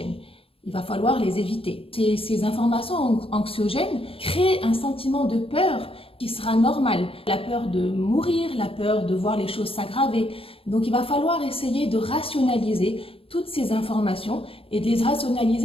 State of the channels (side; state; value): right; late; 0.27 ms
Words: Il va falloir les éviter. Ces informations anxiogènes créent un sentiment de peur qui sera normal. La peur de mourir, la peur de voir les choses s'aggraver. Donc il va falloir essayer de rationaliser toutes ces informations et de les